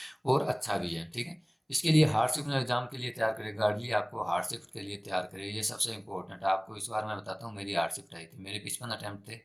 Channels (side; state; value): both; identical; correlation 1.00